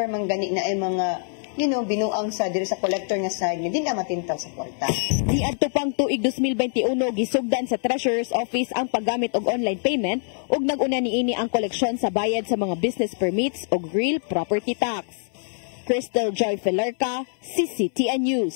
man gani na ay mga, binuang sa diri sa collector nga side, hindi na matintaw sa kwarta. Niadto pang tuig 2021, gisugdan sa Treasurer's Office ang paggamit og online payment ug nag-una niini ang koleksyon sa bayad sa mga business permits ug real property tax. Crystal Joy Pelerca, CCTN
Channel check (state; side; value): silent; right; 62 dB below the other